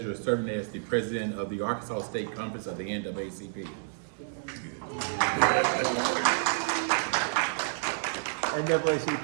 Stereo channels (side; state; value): left; silent; digital silence